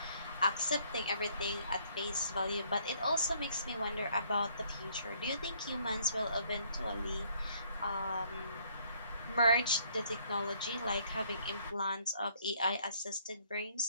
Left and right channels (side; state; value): both; inverted; correlation -0.65